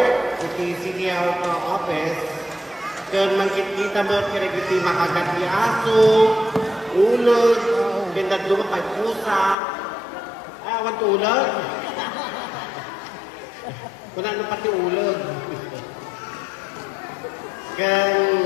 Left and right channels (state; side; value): drops out; right; at 9.6 s